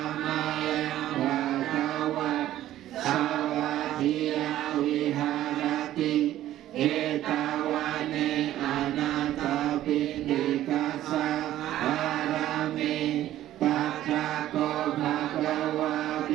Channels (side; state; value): left; quieter; 13.4 dB